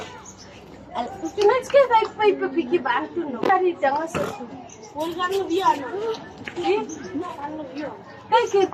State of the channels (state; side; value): identical; both; correlation 1.00